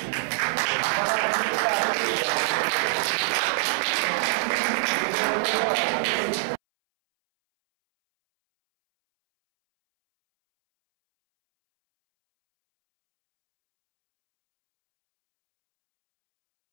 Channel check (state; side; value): silent; left; 62 dB below the other